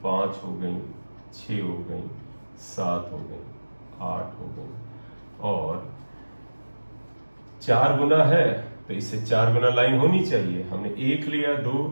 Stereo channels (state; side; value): inverted; both; correlation -1.00